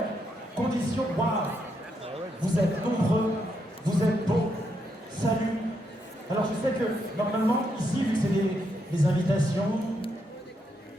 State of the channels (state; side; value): normal; both; correlation 0.79